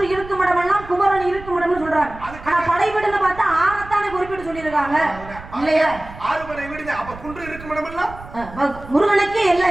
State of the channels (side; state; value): right; noise; rumble, 16 dB below the sound